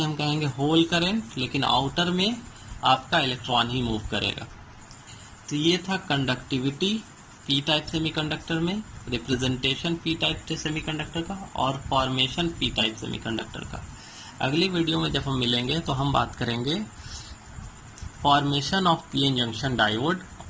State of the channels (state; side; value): identical; both; correlation 1.00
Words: हम कहेंगे होल करंट, लेकिन आउटर में आपका इलेक्ट्रॉन ही मूव करेगा। तो ये था कंडक्टिविटी पी टाइप सेमीकंडक्टर में, रिप्रेजेंटेशन पी टाइप सेमीकंडक्टर का और फॉर्मेशन पी टाइप सेमीकंडक्टर का। अगली वीडियो में जब हम मिलेंगे तो हम बात करेंगे formation of PN junction diode